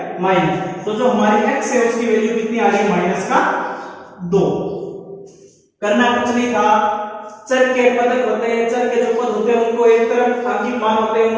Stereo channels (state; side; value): identical; both; correlation 1.00